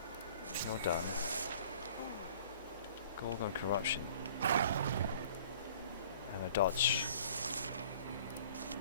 You're done. Gorgon corruption. And a dodge.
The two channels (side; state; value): both; inverted; correlation -0.50